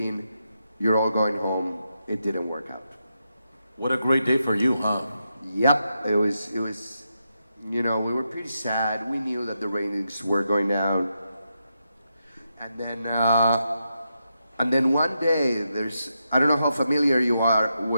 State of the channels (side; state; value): both; inverted; correlation -0.85